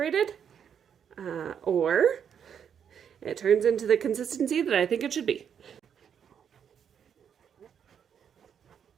or it turns into the consistency that I think it should be.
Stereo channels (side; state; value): left; quieter; 8.0 dB